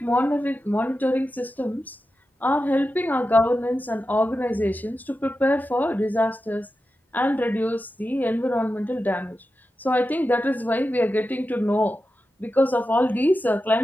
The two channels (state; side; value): normal; both; correlation 0.91